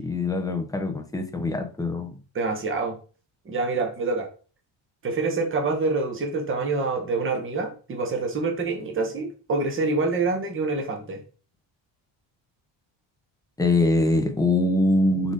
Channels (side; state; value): both; normal; correlation 0.36